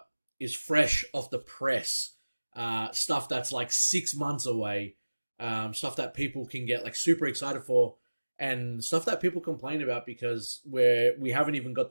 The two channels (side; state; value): both; inverted; correlation -1.00